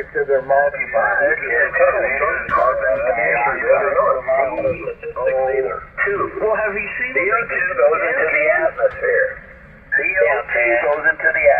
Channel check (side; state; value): both; identical; correlation 1.00